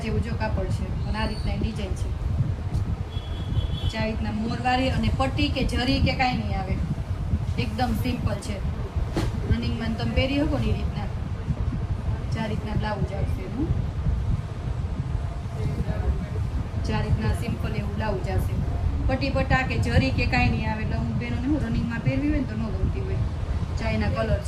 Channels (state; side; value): identical; both; correlation 1.00